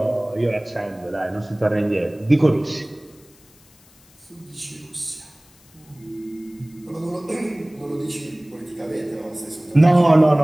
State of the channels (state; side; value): noise; left; hiss, 28 dB below the sound